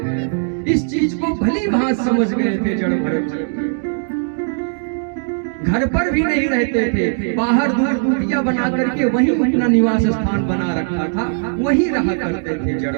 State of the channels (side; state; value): left; silent; digital silence